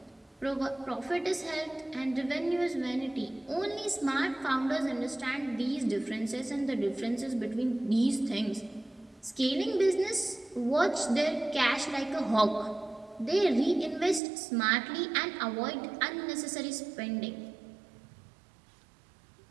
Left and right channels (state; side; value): drops out; left; at 14.2 s